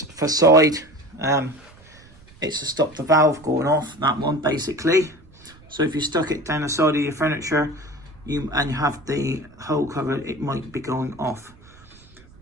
for side. It's to stop the valve going off, that one basically. So if you stuck it down the side of your furniture and you have the hole covered, it might be going off.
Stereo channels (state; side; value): noise; right; rumble, 25 dB below the sound